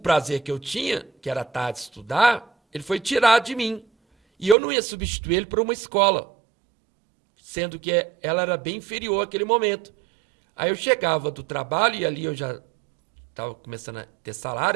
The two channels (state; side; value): drops out; left; at 4.5 s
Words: que eu tinha, que era à tarde estudar, ele foi tirado de mim. E eu não ia substituir ele por uma escola, sendo que ela era bem inferior àquele momento. Aí eu chegava do trabalho e ali eu já estava começando a ter